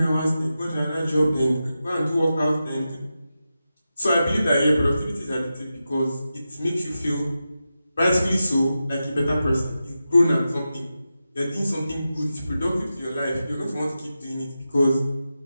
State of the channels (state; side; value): inverted; both; correlation -0.91